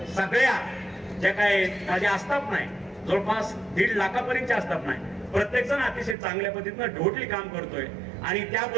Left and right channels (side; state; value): left; drops out; at 6.2 s